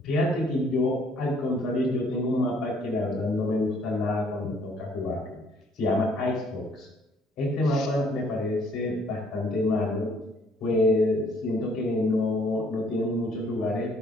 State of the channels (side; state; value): both; normal; correlation 0.63